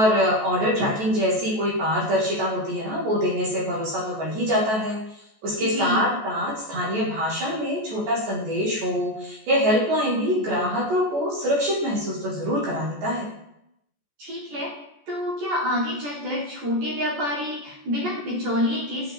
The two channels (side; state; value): left; late; 14 ms